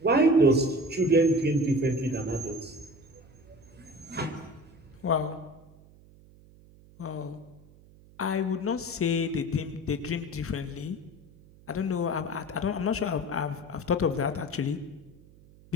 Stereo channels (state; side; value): noise; right; hum, 25 dB below the sound